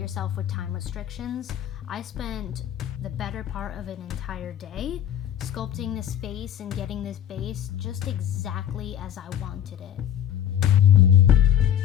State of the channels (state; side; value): quieter; right; 10.4 dB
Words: with time restrictions. I spent the better part of an entire day sculpting this face and getting this base just exactly as I wanted it.